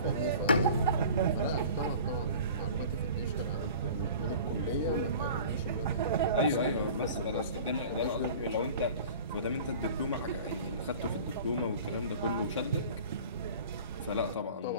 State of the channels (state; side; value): inverted; both; correlation -0.42